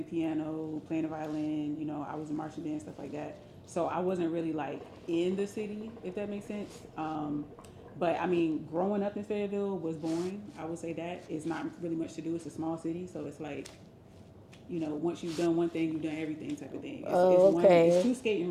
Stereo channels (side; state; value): both; identical; correlation 1.00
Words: the piano, playing the violin, you know, I was in marching band, stuff like that. So I wasn't really like in the city, if that makes sense. But I mean, growing up in Fayetteville was boring. I would say that it's not really much to do. It's a small city, so it's like, you know, once you've done one thing, you've done everything type of thing. It's Oh, one, it's okay. two skating